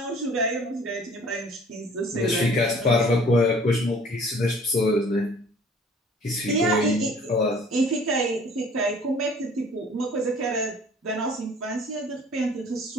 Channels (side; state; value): both; normal; correlation 0.52